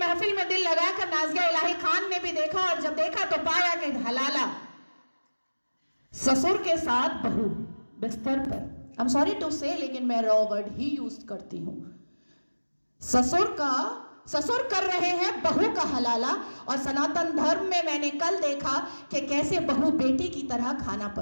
में दिल लगाकर नाज़िया इलाही खान ने भी देखा, और जब देखा तो पाया कि हलाला ससुर के साथ बहू बिस्तर पर, आई एम सॉरी टू से, लेकिन मैं रॉ वर्ड ही यूज करती हूं। ससुर कर रहे हैं बहू का हलाला। और सनातन धर्म में मैंने कल देखा कि कैसे बहू बेटी की तरह खाना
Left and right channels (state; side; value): inverted; both; correlation -1.00